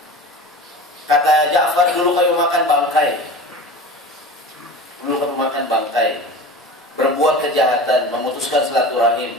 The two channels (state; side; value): normal; both; correlation 0.34